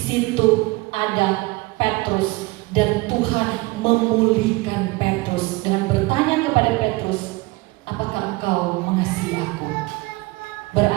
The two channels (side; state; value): left; quieter; 22.8 dB